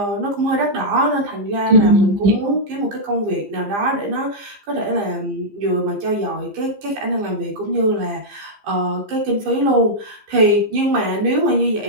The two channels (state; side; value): late; left; 15 ms